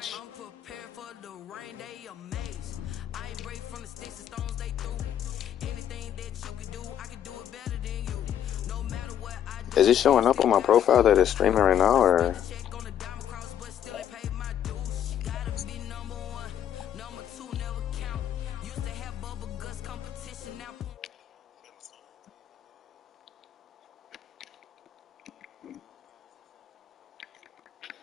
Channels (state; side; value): quieter; right; 10.1 dB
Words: Is it showing up on my profile that it's streaming right now, or?